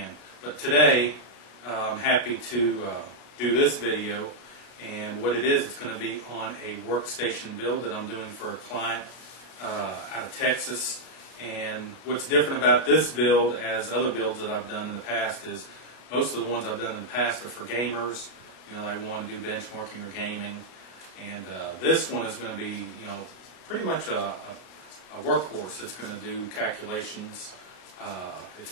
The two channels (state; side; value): late; right; 33 ms